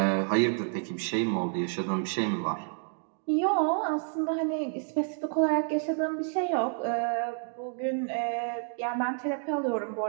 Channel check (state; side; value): silent; left; 58 dB below the other